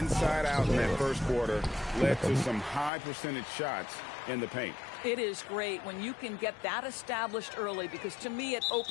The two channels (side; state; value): right; drops out; at 2.9 s